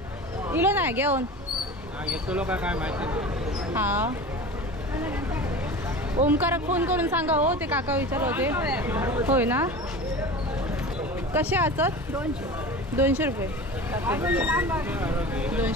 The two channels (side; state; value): both; normal; correlation 0.33